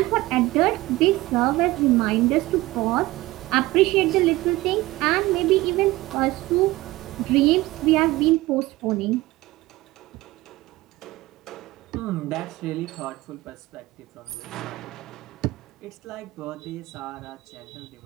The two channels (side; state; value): left; quieter; 19.1 dB